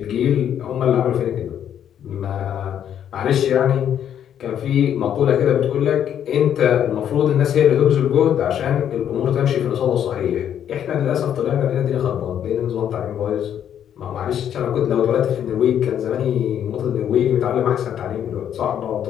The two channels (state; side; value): quieter; right; 9.6 dB